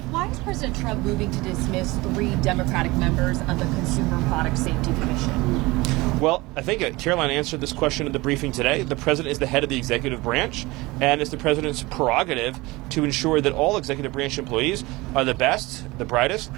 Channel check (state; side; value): quieter; left; 21.8 dB